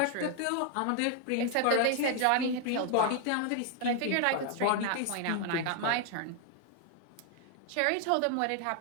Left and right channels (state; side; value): different; both; correlation 0.00